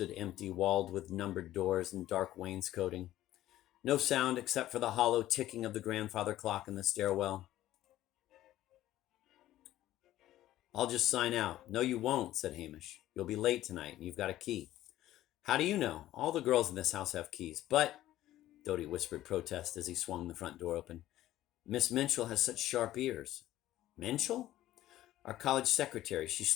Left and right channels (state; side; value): quieter; right; 14.2 dB